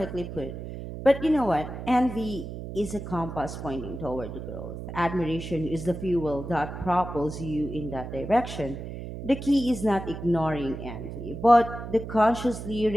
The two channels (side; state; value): right; noise; hum, 9 dB below the sound